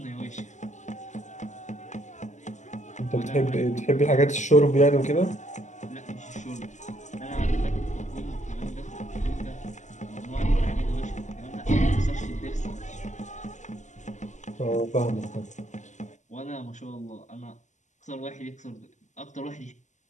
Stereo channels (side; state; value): right; late; 0.34 ms